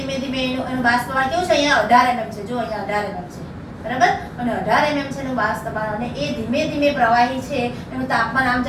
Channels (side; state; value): both; identical; correlation 1.00